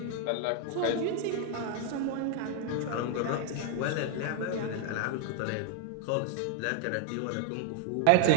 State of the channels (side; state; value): both; different; correlation 0.00